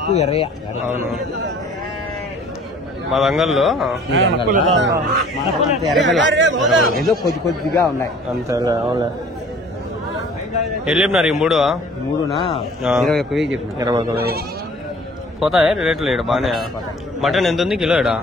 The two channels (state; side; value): normal; both; correlation 0.51